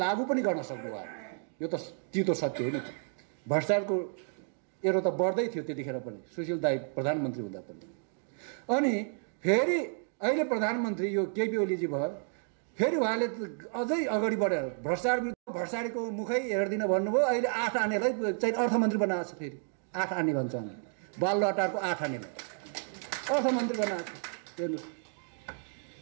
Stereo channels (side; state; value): left; silent; 57 dB below the other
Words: पनि गर्न सक्नु भएन। यो त चितो सत्य हो नि त। भ्रष्टाचारको एरो त बढ्दै थियो त्यतिखेर पनि, सुशील दाई प्रधानमन्त्री हुँदा पनि। अनि फेरि अहिले प्रधानमन्त्री यो केपी ओलीजी भयो, फेरि उहाँले अझै अगाडि बढेर भ्रष्टाचारको मुखै हेर्दिन भन्नुभयो। अहिले 8 आनेलाई चाहिँ अर्थमन्त्री बनाएको छ। फेरि 8 आने भन्छ हामी, बालुवाटारको 8 आनेलाई अर्थमन्त्री बनाएको छ। हेर्नुहोस्,